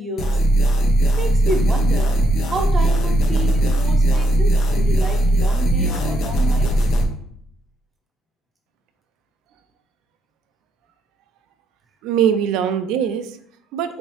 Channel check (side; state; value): both; normal; correlation 0.76